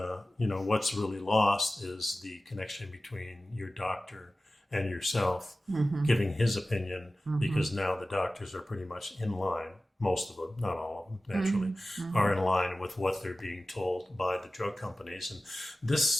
what's really lost is the connection between your doctor and yourself giving his opinion, because now the doctors are pretty much in line. Most of them, not all of them, naturally, are in line with what they're being told by the drug companies. And this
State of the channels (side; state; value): both; normal; correlation 0.96